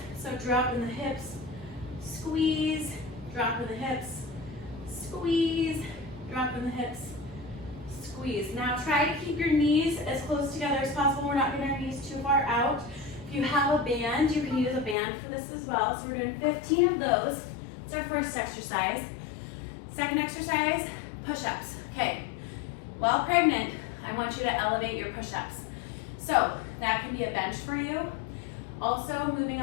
So drop in the hips, squeeze, drop in the hips, squeeze, drop in the hips, squeeze. Now try to keep your knees as close together as possible. We're not getting our knees too far out. If you have a band, you can use a band for this as well. So we're doing 15 of those. It's our first exercise. Second exercise, push-ups. Okay, while pregnant, I want you to elevate your push-ups. So that can be a bench for you. Also, moving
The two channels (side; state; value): right; drops out; at 15.0 s